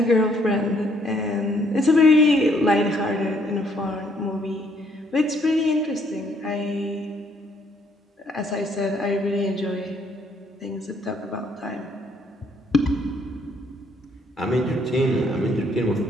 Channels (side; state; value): both; normal; correlation 0.67